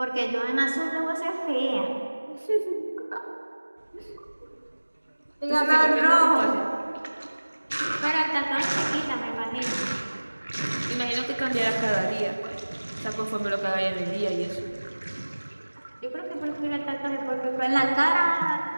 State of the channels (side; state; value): both; inverted; correlation -1.00